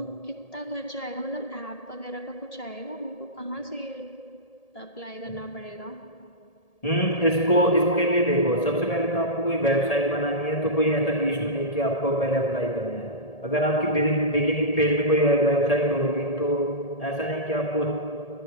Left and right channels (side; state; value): right; late; 1.8 ms